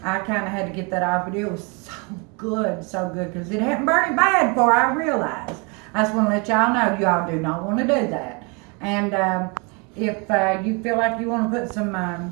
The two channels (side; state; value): left; quieter; 31.8 dB